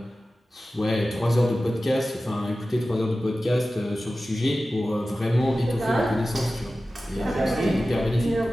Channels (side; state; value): both; normal; correlation 0.95